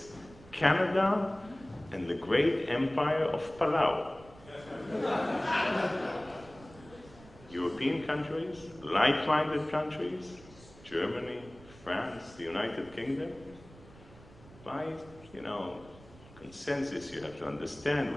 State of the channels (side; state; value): right; noise; rumble, 21 dB below the sound